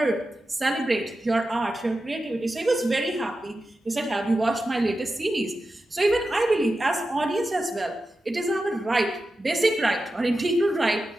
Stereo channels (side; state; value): both; normal; correlation 0.92